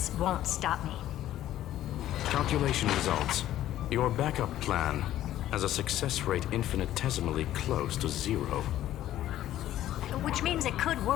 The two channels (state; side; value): quieter; right; 13.0 dB